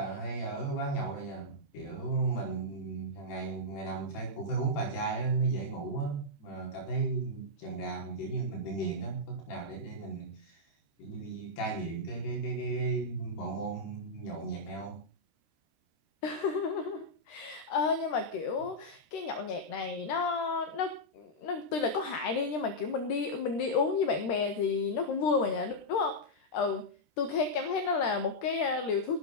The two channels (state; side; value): late; right; 13 ms